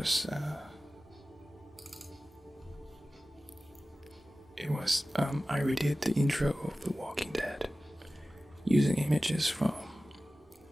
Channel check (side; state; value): both; normal; correlation 0.96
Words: I redid the intro of The Walking Dead using images from